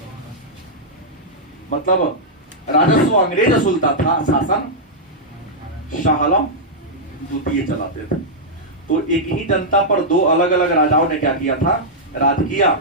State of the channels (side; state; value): both; normal; correlation -0.08